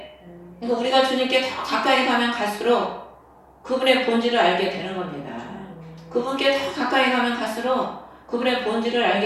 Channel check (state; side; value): identical; both; correlation 1.00